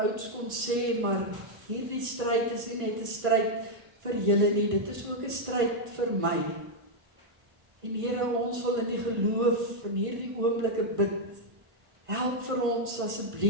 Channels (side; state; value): left; late; 1.5 ms